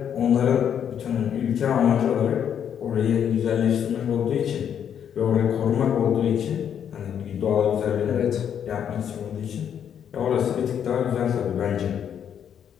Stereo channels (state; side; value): quieter; right; 8.7 dB